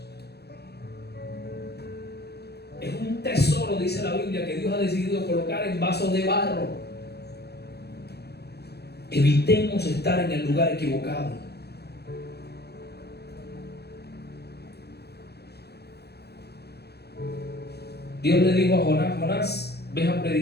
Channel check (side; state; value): right; late; 0.48 ms